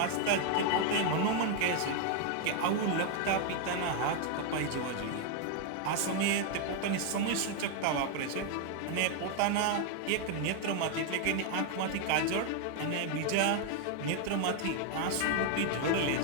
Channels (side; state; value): both; different; correlation 0.01